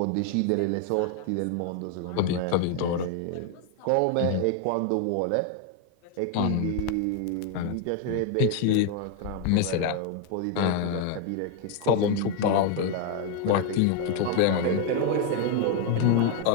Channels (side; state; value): both; different; correlation 0.01